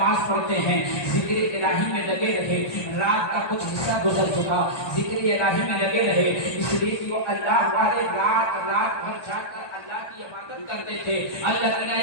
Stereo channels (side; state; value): right; late; 1.4 ms